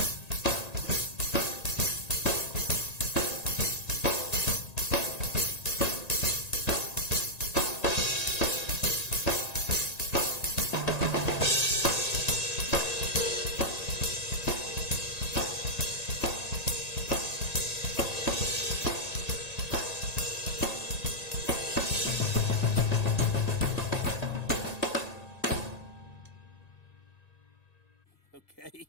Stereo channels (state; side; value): late; right; 1.9 ms